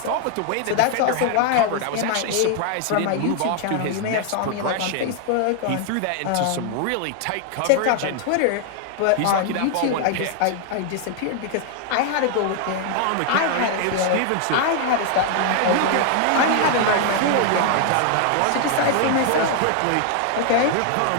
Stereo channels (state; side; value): different; both; correlation 0.00